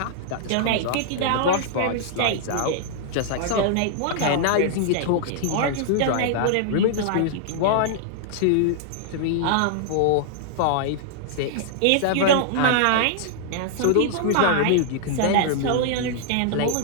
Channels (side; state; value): both; different; correlation -0.01